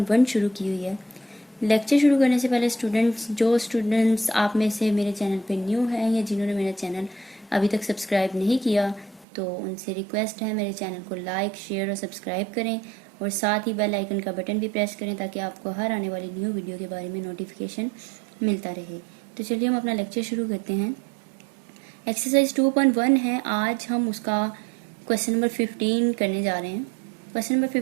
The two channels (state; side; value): drops out; left; at 9.2 s